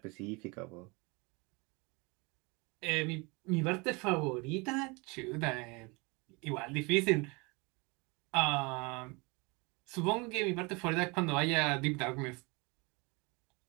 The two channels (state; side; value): quieter; left; 27.9 dB